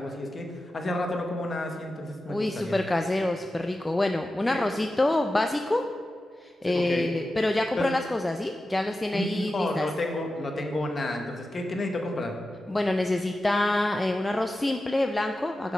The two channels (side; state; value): both; normal; correlation 0.92